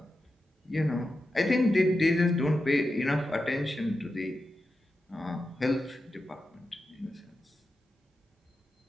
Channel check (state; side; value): normal; both; correlation 0.90